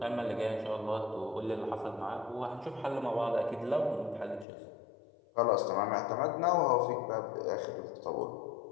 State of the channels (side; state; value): right; drops out; at 4.5 s